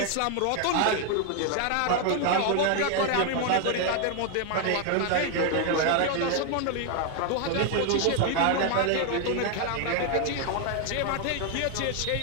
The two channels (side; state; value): both; different; correlation 0.01